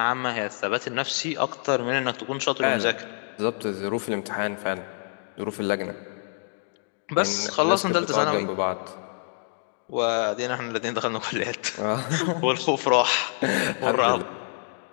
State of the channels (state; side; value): silent; right; 61 dB below the other